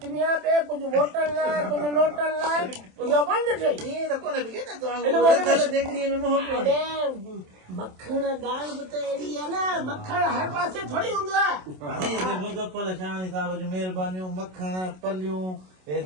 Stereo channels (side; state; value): left; late; 27 ms